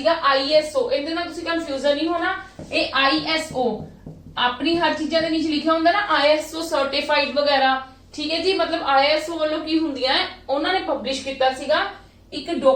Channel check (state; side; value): identical; both; correlation 1.00